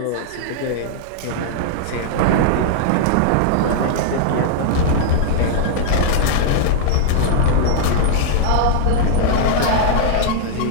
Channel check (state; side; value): different; both; correlation -0.01